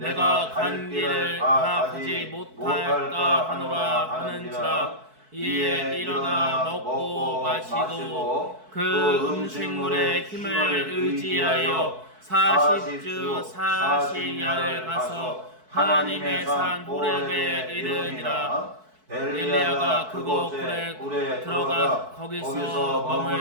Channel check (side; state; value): left; late; 4.6 ms